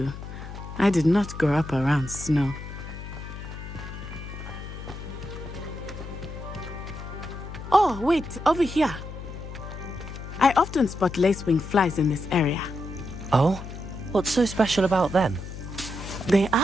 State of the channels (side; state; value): left; noise; hum, 10 dB below the sound